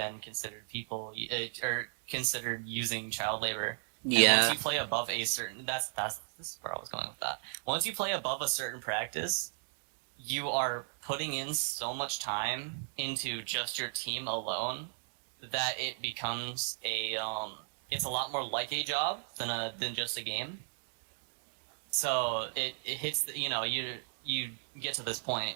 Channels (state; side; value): silent; left; 54 dB below the other